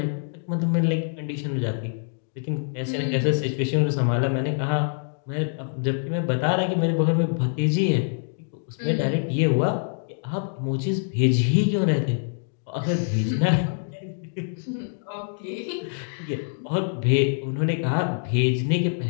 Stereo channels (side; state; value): right; silent; digital silence